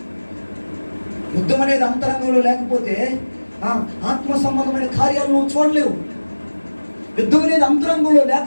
యుద్ధం అనేది అంతరంగంలో లేకపోతే ఆత్మ సంబంధమైన కార్యాలను నువ్వు చూడలేవు. యుద్ధం అనేది అంతరంగంలో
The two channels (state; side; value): inverted; both; correlation -1.00